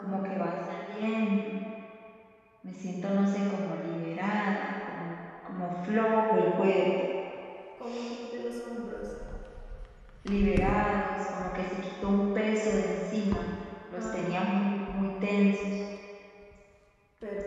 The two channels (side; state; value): both; identical; correlation 1.00